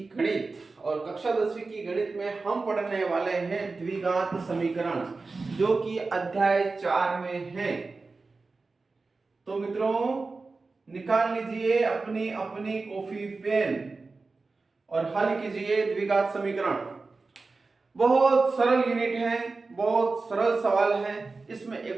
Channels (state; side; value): quieter; left; 3.9 dB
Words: गणित और कक्षा 10वीं की गणित में हम पढ़ने वाले हैं द्विघात समीकरण, जो कि अध्याय 4 में है। तो मित्रों, निकाल लीजिए अपनी अपनी कॉपी पेन और हल कीजिए द्विघात समीकरण। बहुत सरल यूनिट है, बहुत सरल सवाल है। इसमें